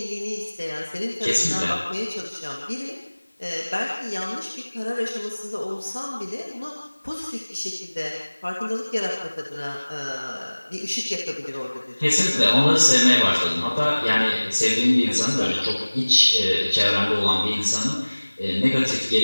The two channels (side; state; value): both; inverted; correlation -1.00